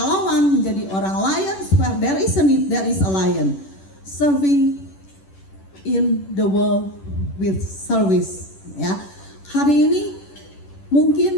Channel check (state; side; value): late; right; 10 ms